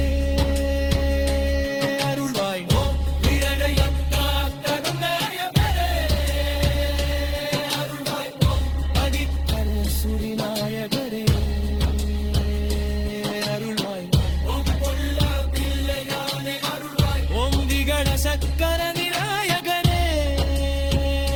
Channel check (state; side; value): identical; both; correlation 1.00